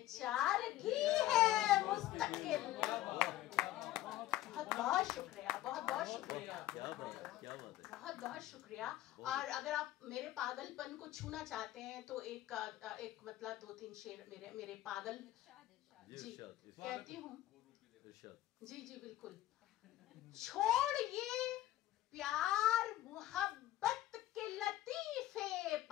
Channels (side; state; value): right; quieter; 14.6 dB